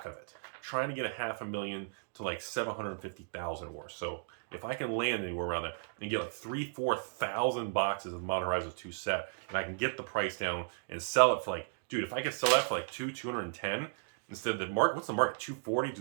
of it. Trying to get $500,000 to like $750,000 worth. So if I can land anywhere around there and get like 3,000-4,000 boxes of Modern Horizons 2 set, and I can get the price down and sell it for like, dude, if I could sell that for like $210 instead of the market, what's the market, $240?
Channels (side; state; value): left; silent; digital silence